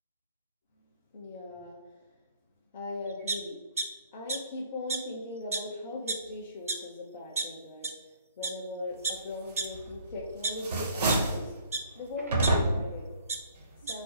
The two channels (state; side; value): inverted; both; correlation -0.58